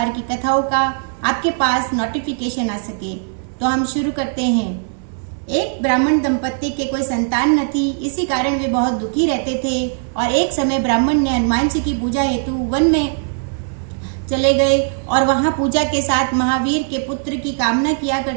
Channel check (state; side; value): silent; left; 67 dB below the other